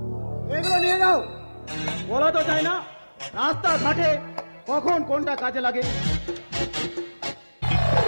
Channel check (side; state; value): both; inverted; correlation -1.00